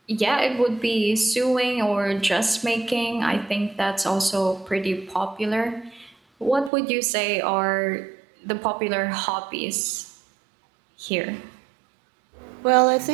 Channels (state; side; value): drops out; left; at 6.7 s